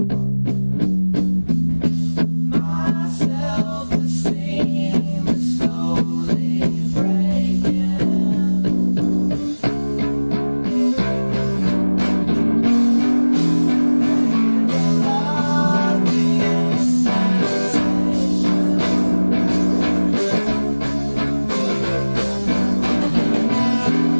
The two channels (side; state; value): both; inverted; correlation -1.00